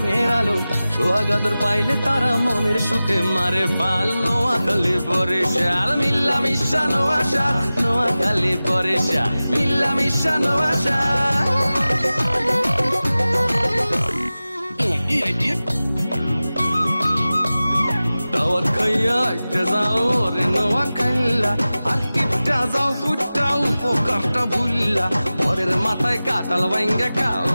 আলো সোহাগাদর পাইলে তারা মনের সুখে মারে পাল নোয়াখালী বরিশাল মিল্লা মিশা নোয়াশাল নোয়াখালী বরিশাল মিল্লা মিশা নোয়াশাল দাওয়াত খাইয়া একটা যাও রে নোয়াখাইলা আর কিপটা যাও ফুটাও পোকারটা ভুললা পরের মাথায় কাটাল ভাঙ্গা খাও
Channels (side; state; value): both; inverted; correlation -0.96